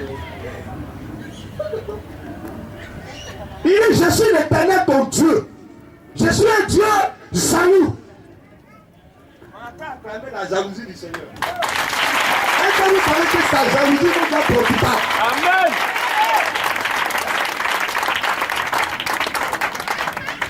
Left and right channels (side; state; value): both; identical; correlation 1.00